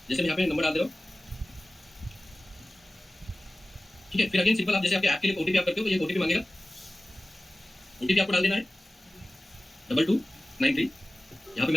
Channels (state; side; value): normal; both; correlation 0.97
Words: जैसे मैं यहाँ पे नंबर डाल दे रहा हूँ। ठीक है, फिर अगेन सिंपल, आप जैसे आपके ऐप के लिए ओटीपी आप करते हो तो ये ओटीपी मांगेगा, ओटीपी आपको डाल देना है 2293। यहाँ पे